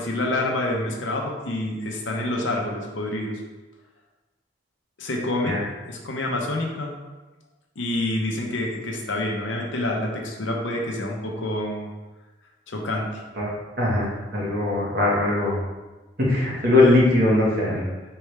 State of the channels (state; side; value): normal; both; correlation 0.56